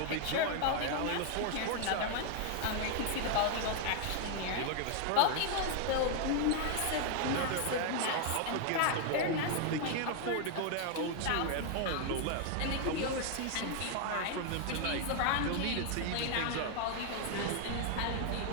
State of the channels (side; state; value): both; different; correlation 0.00